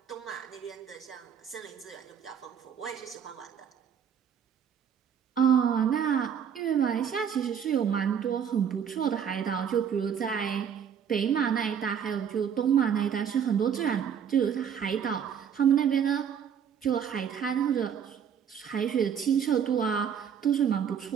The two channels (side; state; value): left; quieter; 8.0 dB